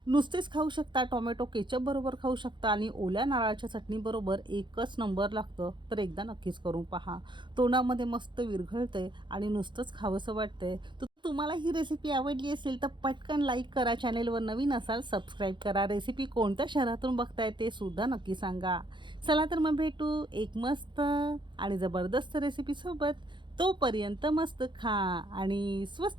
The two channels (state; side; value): late; left; 0.23 ms